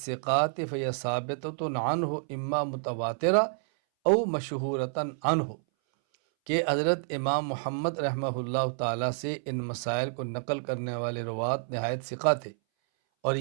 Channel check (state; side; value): silent; left; 58 dB below the other